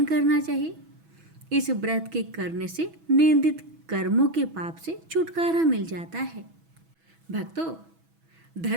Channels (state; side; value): late; left; 6.1 ms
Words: करना चाहिए। इस व्रत के करने से निंदित कर्मों के पाप से छुटकारा मिल जाता है। भक्तों,